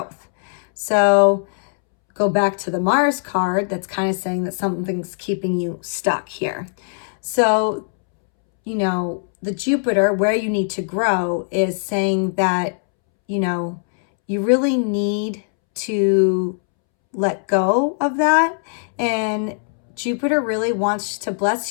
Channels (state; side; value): silent; right; 65 dB below the other